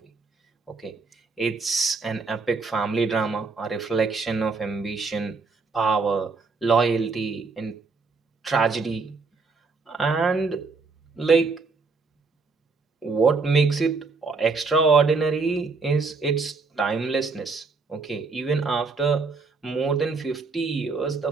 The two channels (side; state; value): left; quieter; 4.3 dB